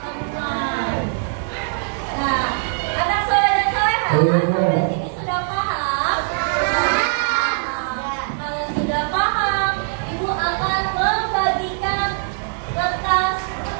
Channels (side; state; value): left; silent; 62 dB below the other